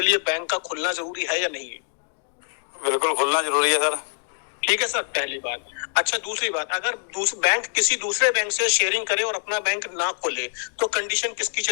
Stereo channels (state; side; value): silent; right; digital silence